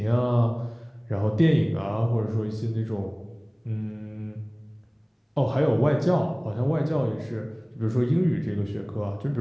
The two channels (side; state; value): both; identical; correlation 1.00